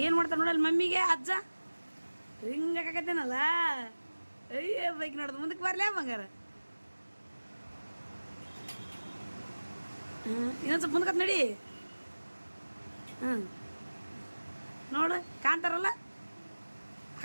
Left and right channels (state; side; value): inverted; both; correlation -1.00